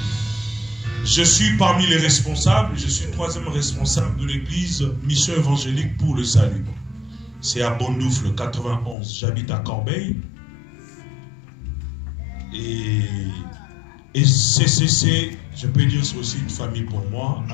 Je suis parmi les responsables, je suis 3e responsable de l'église Mission Évangélique pour le Salut. C'est à Bondoufle, 91. J'habite à Corbeil. Et CCC, je peux dire, c'est aussi une famille pour moi.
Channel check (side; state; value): right; drops out; at 9.0 s